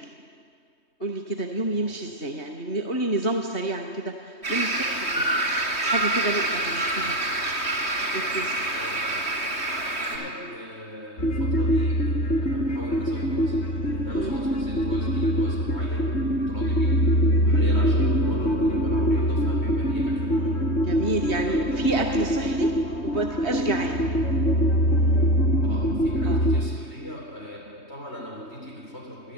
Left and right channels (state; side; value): late; right; 3.2 ms